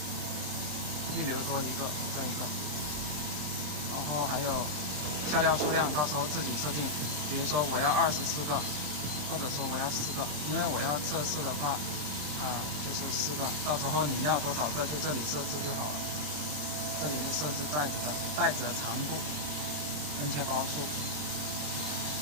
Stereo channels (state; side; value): late; left; 27 ms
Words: 预留多一个这一个，然后还有下料数量，到时候自己设定，比如说我要24个，或者说我要4个，因为我要测试的话。就是4个，到时候你要多少个就这里设置就好了。这里就设置袋子的长度、分切包数